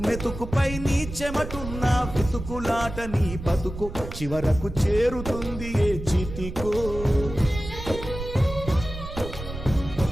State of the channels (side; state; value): right; noise; rumble, 9 dB below the sound